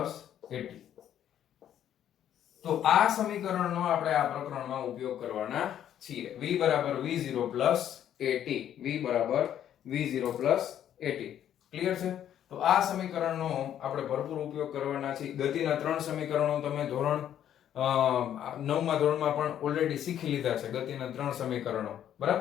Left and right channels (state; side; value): quieter; right; 10.5 dB